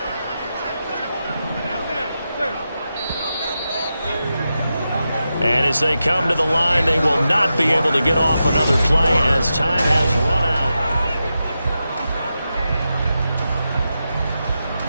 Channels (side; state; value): both; inverted; correlation -0.89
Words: And as they come to the line, they will not be able to get off another play as time has run out.